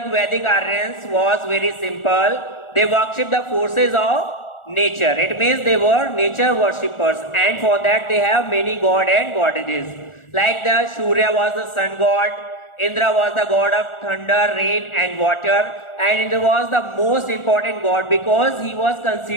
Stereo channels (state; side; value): late; right; 1.4 ms